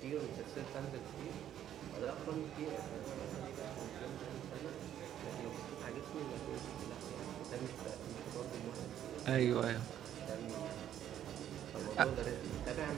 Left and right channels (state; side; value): quieter; left; 10.8 dB